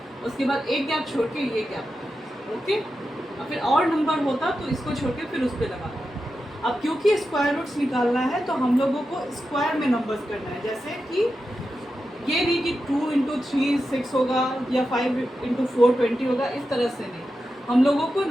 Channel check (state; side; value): normal; both; correlation 0.90